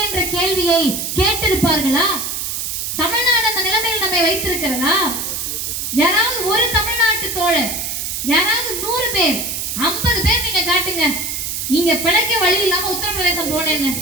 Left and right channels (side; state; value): right; noise; hiss, 3 dB below the sound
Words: கேள்வியை கேட்டிருப்பார்களா? தமிழ்நாடு அந்த நிலைமையில் நம்மை வைத்திருக்கிறதா? யாராவது ஒரு தமிழ்நாட்டு தோழர், யாராவது 100 பேர், 50 பேர் நீங்க காட்டுங்க, இங்க பிழைக்க வழி இல்லாம உத்தரப்பிரதேசம் போனேன்னு,